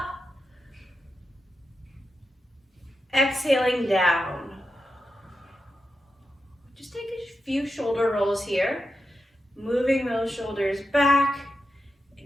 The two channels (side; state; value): both; normal; correlation 0.88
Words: Exhaling down. Just take a few shoulder rolls here. Moving those shoulders back